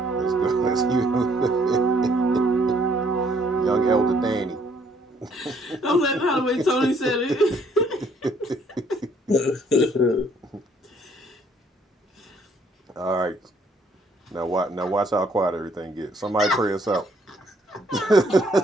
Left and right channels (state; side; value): normal; both; correlation 0.65